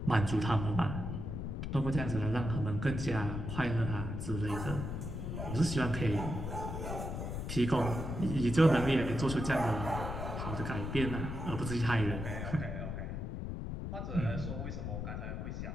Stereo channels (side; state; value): left; noise; rumble, 4 dB below the sound